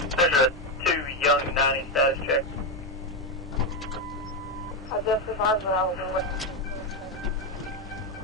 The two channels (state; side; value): normal; both; correlation 0.10